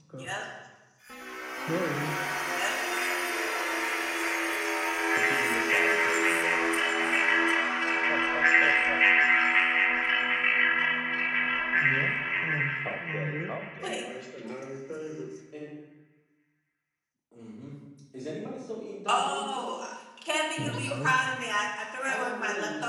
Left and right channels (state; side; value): identical; both; correlation 1.00